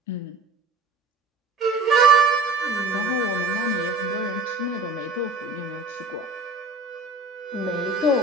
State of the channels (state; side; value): quieter; left; 3.4 dB